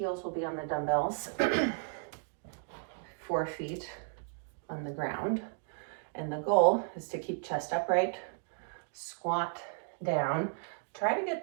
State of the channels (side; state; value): left; silent; digital silence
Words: will be on the dumbbells, 4 feet on the ground. And the goal is to keep chest upright, squat down. Try to get